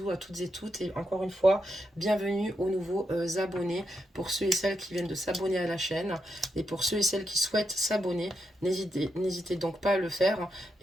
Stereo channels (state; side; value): normal; both; correlation 0.83